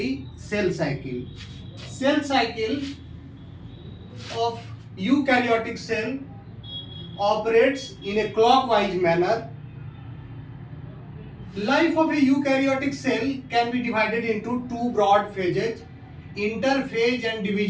cell cycle. Cell cycle of eukaryotic cell operates in a clockwise manner. Life of a eukaryotic cell can be divided into two broad phases, interphase and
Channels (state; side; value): identical; both; correlation 1.00